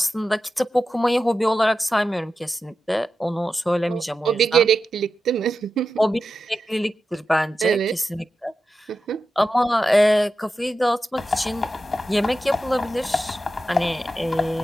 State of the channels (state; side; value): normal; both; correlation 0.91